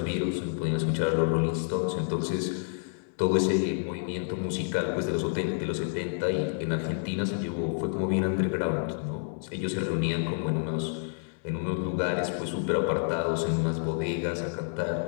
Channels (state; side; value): silent; right; digital silence